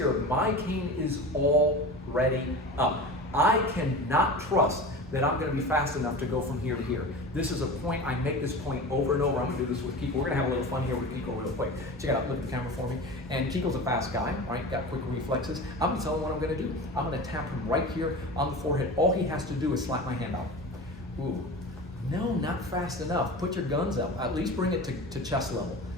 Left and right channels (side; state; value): both; normal; correlation 0.31